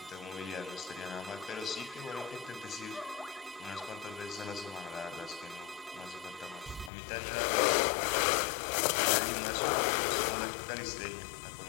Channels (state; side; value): drops out; right; at 6.9 s